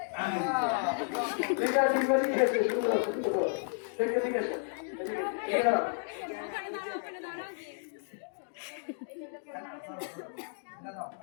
ঠিক আছে, ঠিক আছে, ঠিক আছে।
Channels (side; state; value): right; silent; digital silence